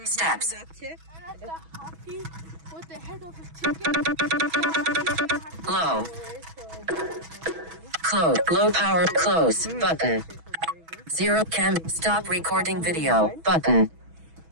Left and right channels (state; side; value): late; left; 6.2 ms